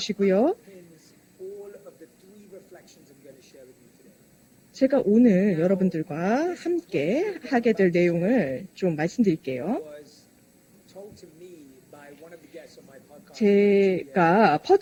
제가 오늘 여러분들과 함께 하게 될 내용을 좀 말씀드릴게요. 제가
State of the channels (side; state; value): both; identical; correlation 1.00